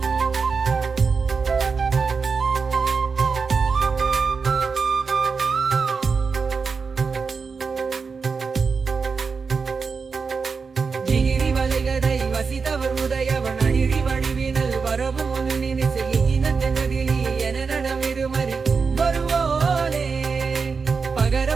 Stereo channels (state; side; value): quieter; left; 5.1 dB